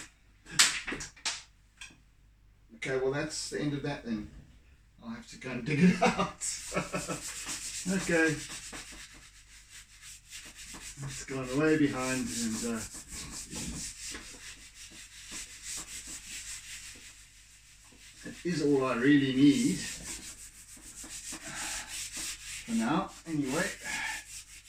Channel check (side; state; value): both; identical; correlation 1.00